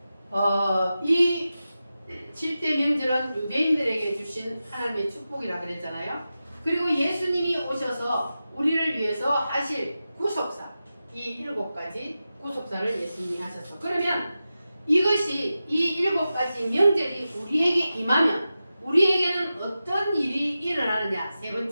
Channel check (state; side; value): inverted; both; correlation -0.93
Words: 이 7대 명절은 유대인들에게 주신 하나님의 축복이라 그랬잖아요. 그리고 예수님이 오셔서 우리를 위해서 하실 구속사, 이 7가지 구속사를 예수님이 하셨어. 그러면 이것이 이 7가지 명절이 우리에게 임하면 우리에게는 어떤 일이 일어나느냐? 세